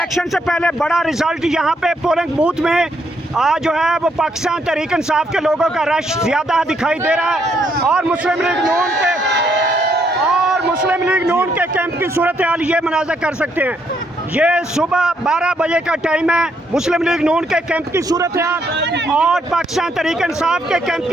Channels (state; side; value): normal; both; correlation 0.73